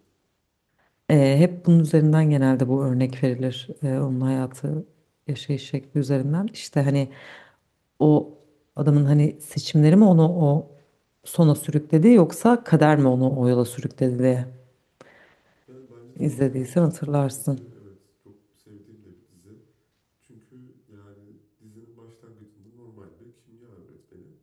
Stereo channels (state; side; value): identical; both; correlation 1.00